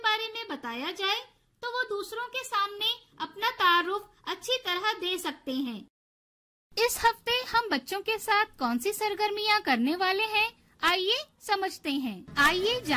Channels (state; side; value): identical; both; correlation 1.00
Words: में बताया जाए तो वो दूसरों के सामने अपना तारुफ अच्छी तरह दे सकते हैं। इस हफ्ते हम बच्चों के साथ कौन सी सरगर्मियां करने वाले हैं, आइए समझते हैं। आइए